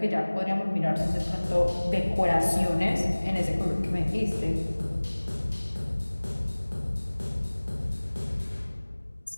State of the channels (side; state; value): both; inverted; correlation -1.00